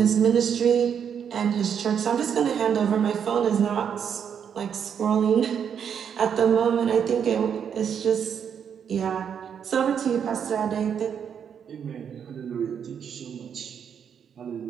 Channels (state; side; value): quieter; left; 7.8 dB